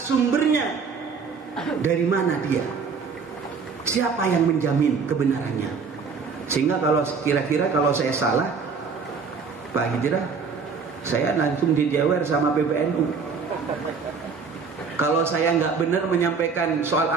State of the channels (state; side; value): quieter; left; 5.3 dB